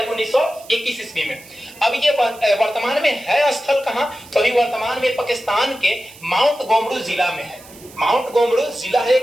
1921 ईस्वी में। अब ये वर्तमान में है स्थल कहां? तो अभी वर्तमान में पाकिस्तान के माउंट गोमरू जिला में है। माउंट गोमरू जिला है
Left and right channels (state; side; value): noise; right; hiss, 21 dB below the sound